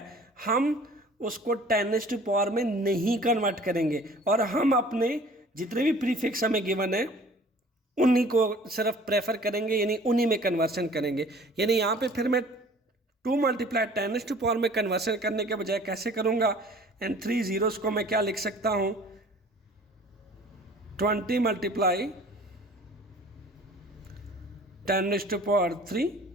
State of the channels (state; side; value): normal; both; correlation 0.49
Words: हम उसको 10⁻⁴ में नहीं कन्वर्ट करेंगे, और हम अपने जितने भी प्रीफिक्स हमें गिवन है उन्हीं को सिर्फ प्रेफर करेंगे, यानी उन्हीं में कन्वर्शन करेंगे। यानी यहाँ पे फिर मैं 2 × 10⁻⁴ में कन्वर्शन करने के बजाय कैसे करूँगा, एंड 3 zeros को मैं क्या लिख सकता हूँ, 20 × 10⁻³